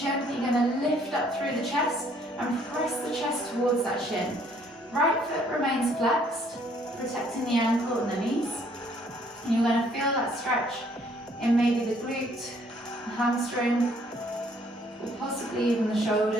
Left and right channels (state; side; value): normal; both; correlation 0.63